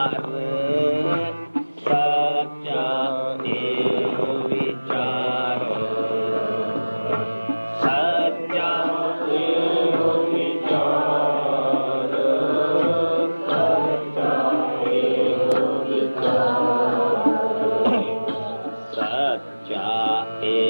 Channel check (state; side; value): inverted; both; correlation -1.00